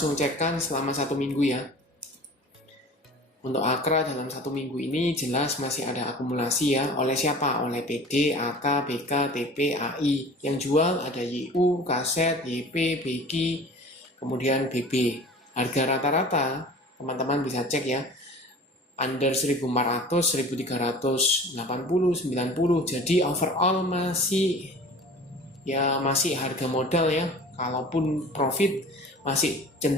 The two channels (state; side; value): normal; both; correlation 0.42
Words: cekkan selama satu minggu ya. Untuk Akra dalam satu minggu ini jelas masih ada akumulasi ya. Oleh siapa? Oleh PD, AK, BK, TP, AI. Yang jual ada YU, KZ, YP, BG, kemudian BB. Harga rata-rata teman-teman bisa cek ya, under 1400, 1380, 90. Jadi overall masih harga modal ya. Kalaupun profit masih